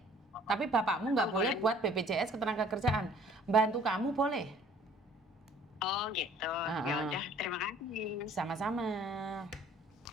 Tapi bapakmu nggak boleh buat BPJS ketenaga kerjaan. Bantu kamu boleh. Oh gitu. Ya udah, terima kasih. Sama-sama.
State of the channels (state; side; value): normal; both; correlation 0.55